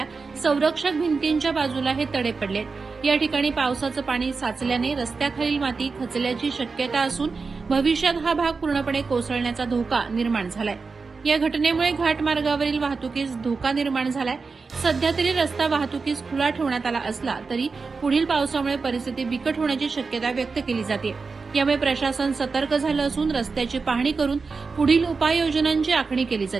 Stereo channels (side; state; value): left; quieter; 4.5 dB